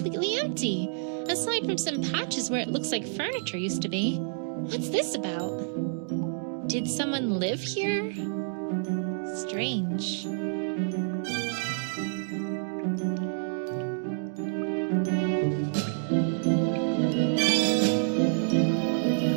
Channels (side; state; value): left; silent; digital silence